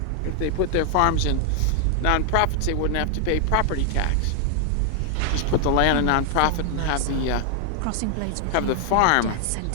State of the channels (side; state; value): both; different; correlation 0.00